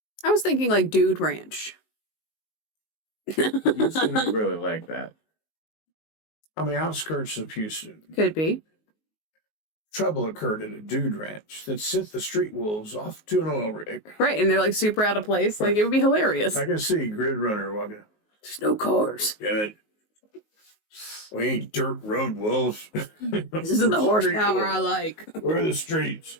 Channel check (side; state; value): right; late; 19 ms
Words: was thinking like Dude Ranch. Houston ain't really like that. On the outskirts of Houston, Could be. trouble occurred at a dude ranch that sent the street wolves off to an oil rig. Right. And they're like super out of place. Like, it would be hilarious. I can see Grid Runner walking. There's no cars. Damn it. We ain't dirt road wolves. This isn't the horsepower I like. We're the streets.